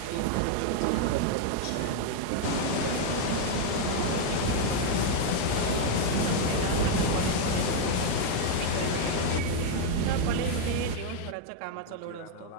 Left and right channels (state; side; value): different; both; correlation 0.00